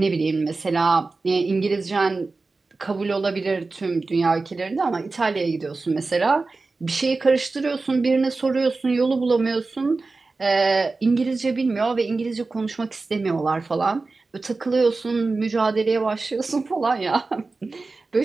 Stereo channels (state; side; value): quieter; left; 3.7 dB